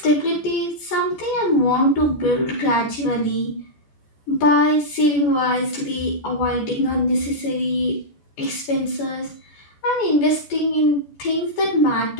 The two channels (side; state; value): right; late; 14 ms